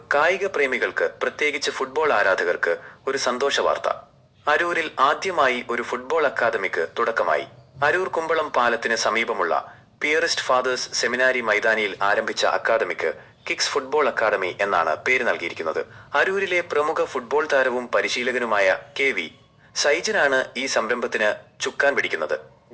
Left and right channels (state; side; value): identical; both; correlation 1.00